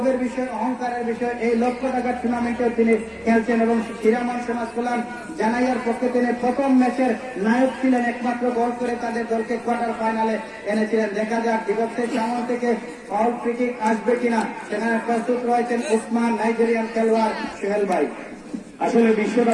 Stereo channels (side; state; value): both; identical; correlation 1.00